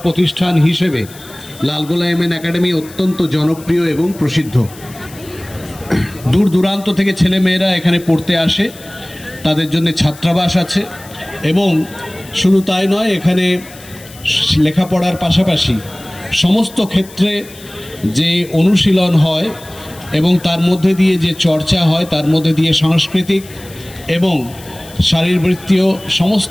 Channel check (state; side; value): noise; left; hiss, 20 dB below the sound